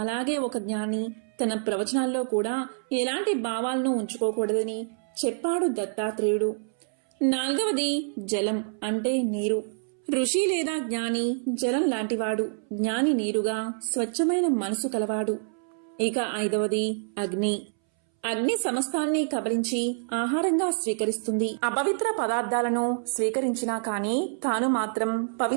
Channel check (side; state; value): left; silent; 60 dB below the other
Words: అలాగే ఒక జ్ఞాని తన ప్రవచనాల్లో కూడా ఎలాంటి భావాలను ఉంచుకోకూడదని చెప్పాడు దత్తాత్రేయుడు. నాలుగవది జలం, అంటే నీరు. ఋషి లేదా జ్ఞాని జలం లాంటివాడు, జ్ఞాని నీరుగా స్వచ్ఛమైన మనసు కలవాడు. ఇక ఐదవది అగ్ని. అగ్ని సమస్తాన్ని కబలించి ఆహారంగా స్వీకరిస్తుంది. అపవిత్ర పదార్థాలను స్వీకరించినా కాని తాను మాత్రం